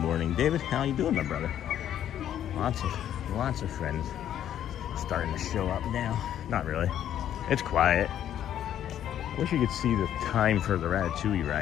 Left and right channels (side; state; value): right; quieter; 10.7 dB